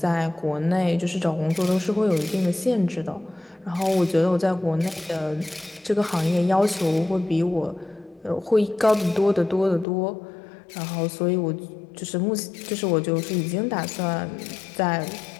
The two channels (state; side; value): drops out; right; at 9.9 s